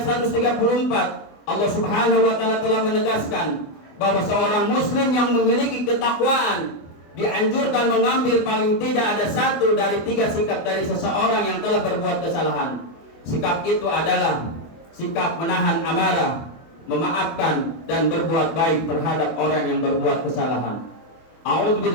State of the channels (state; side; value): late; right; 24 ms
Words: 134, Allah Subhanahu wa taala telah menegaskan bahwa seorang muslim yang memiliki ketakwaan dianjurkan mengambil paling tidak ada 1 dari 3 sikap dari seseorang yang telah berbuat kesalahan. Sikap itu adalah sikap menahan amarah, memaafkan dan berbuat baik terhadap orang yang berbuat kesalahan.